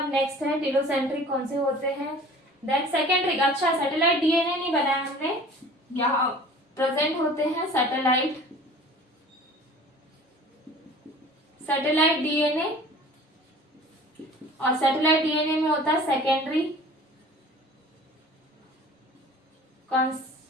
नेक्स्ट है टीलोसेंट्रिक कौन से होते हैं। देन सेकेंड्रिक, अच्छा सैटेलाइट डीएनए नहीं बनाया हमने, यहाँ प्रेजेंट होते हैं सैटेलाइट डीएनए। और सैटेलाइट डीएनए में होता है सेकेंडरी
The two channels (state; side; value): normal; both; correlation 0.45